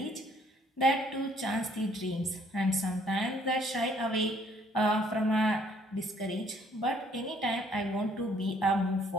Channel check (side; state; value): both; normal; correlation 0.63